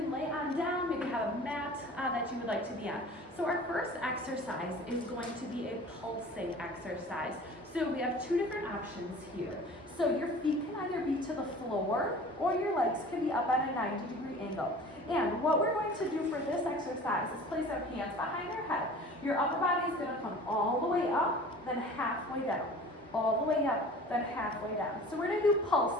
lay on down, maybe have a mat that you would like to be on. So our first exercise is going to be a pulsing exercise. So we have two different options here. So your feet can either be to the floor or your legs can be up at a 90-degree angle. And what we're going to do for this exercise is place our hands behind your head. Your upper body is going to come all the way up, then halfway down. All the way up, then halfway down. So we're going to do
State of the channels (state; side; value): normal; both; correlation 0.42